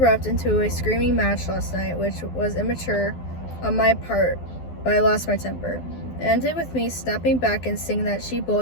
into a screaming match last night, which was immature on my part, but I lost my temper. It ended with me snapping back and saying that she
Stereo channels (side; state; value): right; late; 12 ms